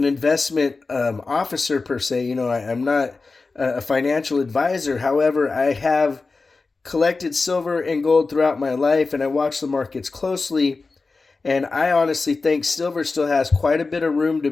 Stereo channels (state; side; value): quieter; right; 3.9 dB